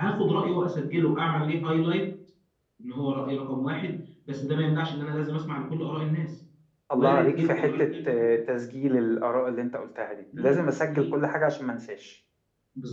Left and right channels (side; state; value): both; identical; correlation 1.00